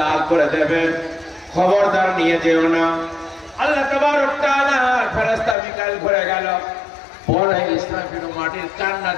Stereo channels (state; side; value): drops out; right; at 5.6 s